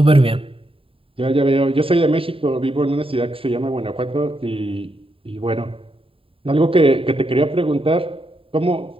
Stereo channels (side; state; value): left; late; 0.27 ms